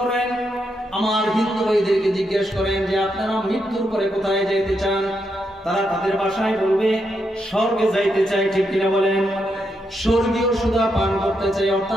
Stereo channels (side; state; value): both; normal; correlation 0.82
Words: আমার হিন্দু ভাইদেরকে জিজ্ঞেস করেন যে আপনারা মৃত্যুর পরে কোথায় যাইতে চান, তারা তাদের ভাষায় বলবে স্বর্গে যাইতে চাই। ঠিক কিনা বলেন? স্বর্গীয় সুধা পান করতে চাই,